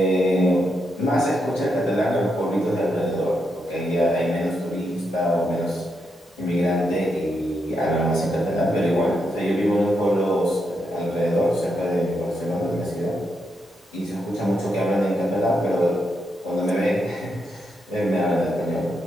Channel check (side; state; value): both; normal; correlation 0.82